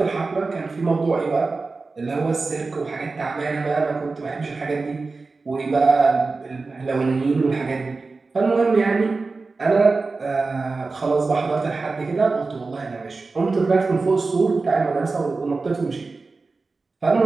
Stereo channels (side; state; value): left; quieter; 3.9 dB